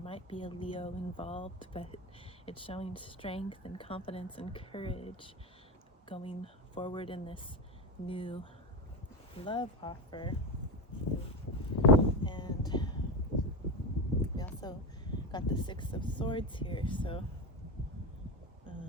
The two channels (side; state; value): both; normal; correlation 0.18